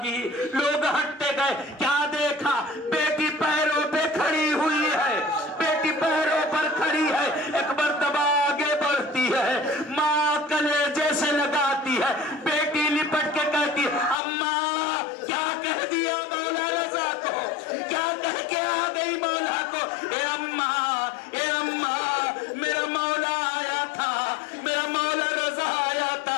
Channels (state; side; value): drops out; right; at 14.2 s